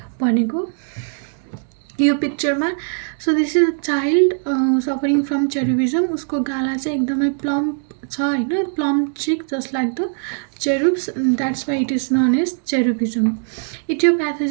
भनेको यो पिक्चरमा. So this is a child suffering from cherubism. उसको गाला चाहिँ एकदमै प्लम्प छ होइन, plump cheek just like the cherubs, that's why it is known as cherubism.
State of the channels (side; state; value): left; silent; 66 dB below the other